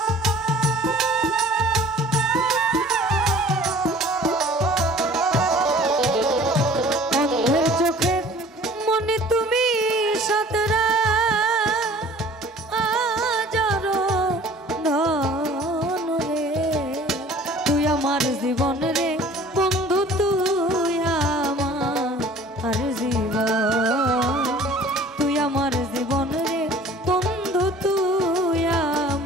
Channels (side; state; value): both; normal; correlation 0.49